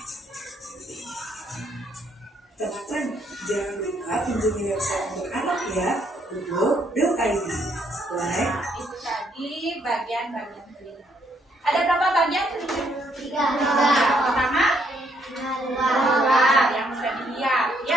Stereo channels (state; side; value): normal; both; correlation 0.71